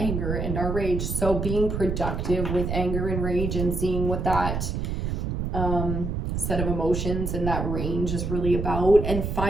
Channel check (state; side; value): noise; right; rumble, 2 dB below the sound